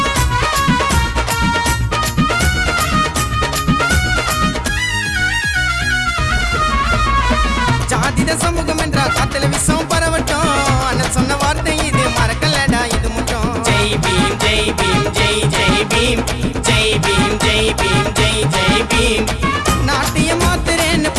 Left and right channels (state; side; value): identical; both; correlation 1.00